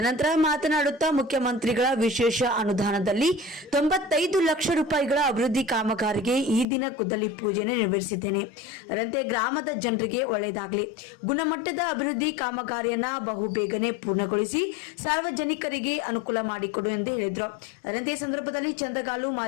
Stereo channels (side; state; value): right; drops out; at 6.7 s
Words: ಮಾತನಾಡುತ್ತಾ ಮುಖ್ಯಮಂತ್ರಿಗಳ ವಿಶೇಷ ಅನುದಾನದಲ್ಲಿ 95 ಲಕ್ಷ ರೂಪಾಯಿಗಳ ಅಭಿವೃದ್ಧಿ ಕಾಮಗಾರಿಗೆ ಈ ದಿನ ಗುದ್ದಲಿ ಪೂಜೆಯನ್ನು ನೆರವೇರಿಸಿದ್ದೇನೆ. ಅದರಂತೆ ಗ್ರಾಮದ ಜನರಿಗೆ ಒಳ್ಳೆಯದಾಗಲಿ, ಗುಣಮಟ್ಟದ ಅಭಿವೃದ್ಧಿ ಕಾಮಗಾರಿಯನ್ನ ಬಹು ಬೇಗನೆ ಪೂರ್ಣಗೊಳಿಸಿ ಸಾರ್ವಜನಿಕರಿಗೆ ಅನುಕೂಲ ಮಾಡಿಕೊಡು ಎಂದು ಹೇಳಿದರು. ಅದರಂತೆ ಸಂದರ್ಭದಲ್ಲಿ ಚಂದಗಾಲು